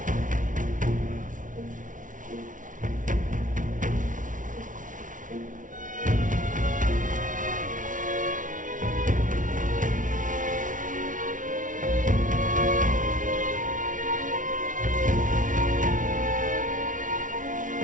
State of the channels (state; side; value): late; left; 0.38 ms